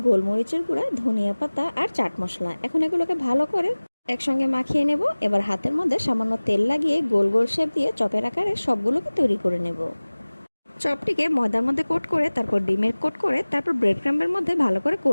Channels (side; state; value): both; inverted; correlation -1.00